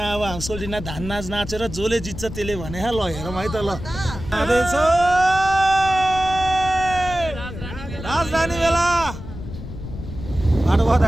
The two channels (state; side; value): noise; left; rumble, 10 dB below the sound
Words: अब हाम्रो सोल्टिना धान नाच नाचेर जसले जित्छ त्यसले भने ल हेरौँ है त। ल राजधानी मेला बाटो बहुत